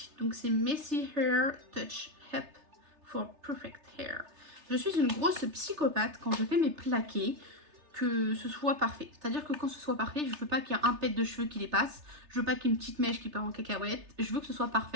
Donc c'est Messy Hair Touch Help for Perfect Hair. Je suis une grosse psychopathe quand je fais mes plaqués, que ce soit parfait. C'est-à-dire que quand ce soit parfait, je veux pas qu'il y ait un pet de cheveux qui dépasse. Je veux pas qu'il y ait une petite mèche qui part en cacahuète. Je veux que ce soit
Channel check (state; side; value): late; left; 3.3 ms